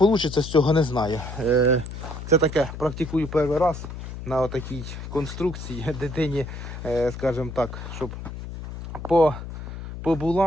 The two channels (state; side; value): noise; left; hum, 9 dB below the sound